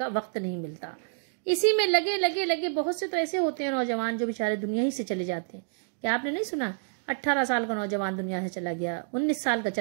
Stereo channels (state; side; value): silent; left; digital silence